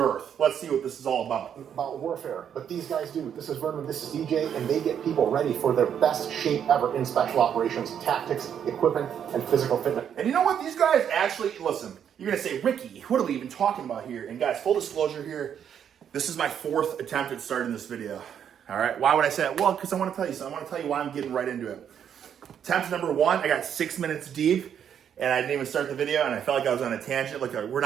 Let's see what this is all about. About warfare, but these guys do. This is Vernon, this is DJ, and they get people ready for their best shape ever in special operations, tactics, equipment, and physical fitness. And you know what? These guys actually, listen, you're going to say, Ricky, what are we even talking about here? And guys, full disclosure here, this is my 4th attempt at starting this video. All right, why would I say that? Well, because I want to tell you something. I want to tell you why I'm getting right into it. Attempt number 1, I got 6 minutes deep, and I didn't even start the video, and I felt like I was on a tangent. Like, we're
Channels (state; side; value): quieter; left; 8.7 dB